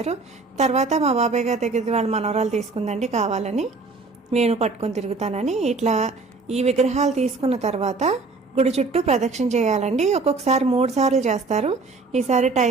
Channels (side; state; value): left; quieter; 3.9 dB